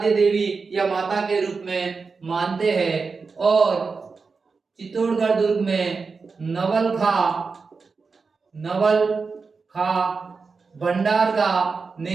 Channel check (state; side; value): quieter; left; 4.7 dB